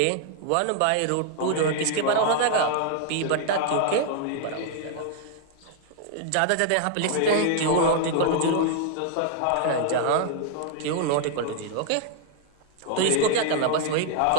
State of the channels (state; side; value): different; both; correlation 0.00